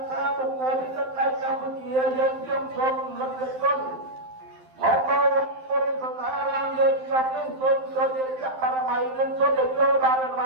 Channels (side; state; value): left; late; 12 ms